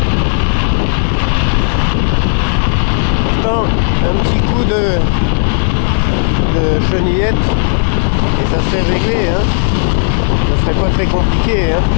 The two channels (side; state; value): right; silent; digital silence